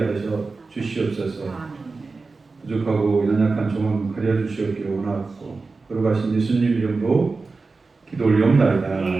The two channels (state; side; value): quieter; left; 4.0 dB